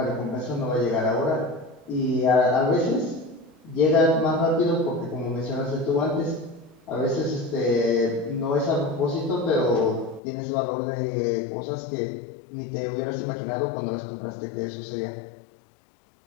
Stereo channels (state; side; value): drops out; right; at 10.2 s